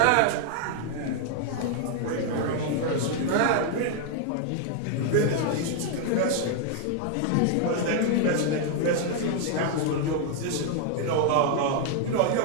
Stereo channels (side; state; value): both; different; correlation 0.00